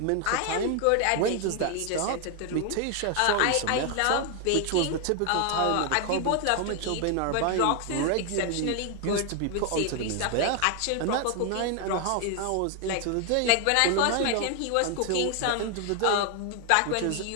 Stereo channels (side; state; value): both; different; correlation 0.00